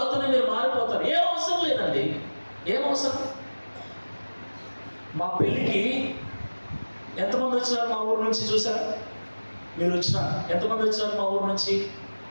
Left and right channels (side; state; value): both; inverted; correlation -1.00